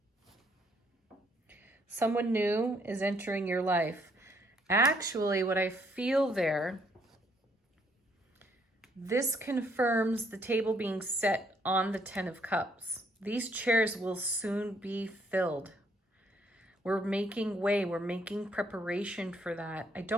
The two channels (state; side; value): normal; both; correlation 0.69